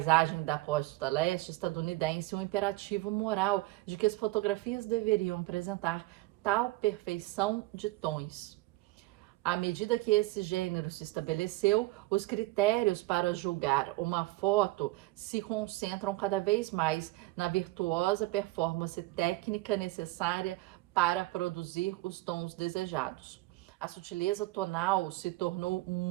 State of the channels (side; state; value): left; quieter; 20.1 dB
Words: da costa leste estadunidense, um imperativo moral de que as fotografias deveriam apresentar tal perfeição de tons. À medida que esse gênero se estabeleceu, os critérios para julgar uma foto se concentram cada vez mais na virtuosa performance técnica necessária para produzir os tons desejados. A sutileza tonal se tornou